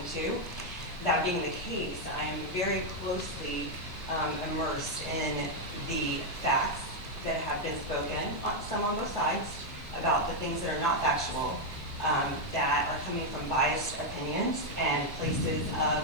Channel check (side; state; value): both; normal; correlation 0.01